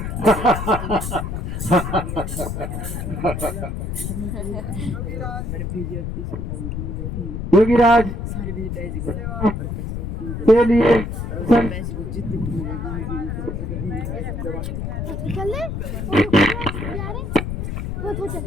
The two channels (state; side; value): noise; left; rumble, 4 dB below the sound